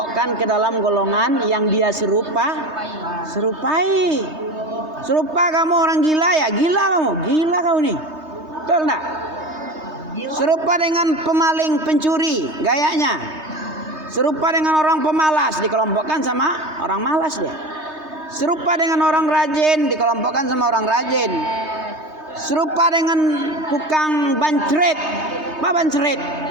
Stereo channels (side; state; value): left; late; 3.2 ms